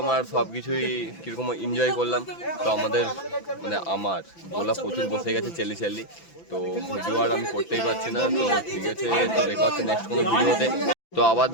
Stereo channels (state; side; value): late; right; 6.0 ms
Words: আর সব কিছুই কীরকম এনজয় করলাম। তো আমাদের মানে আমার গোলা প্রচুর বসে গেছে চেলি, তো ভিডিও আর আমি করতেই পারছি না। তো ঠিক আছে, তো দেখা হচ্ছে নেক্সট কোনো ভিডিওতে। তো আবার